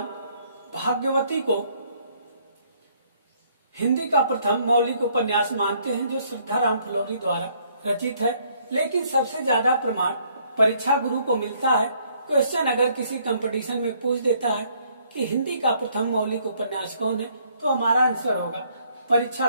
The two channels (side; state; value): both; inverted; correlation -0.66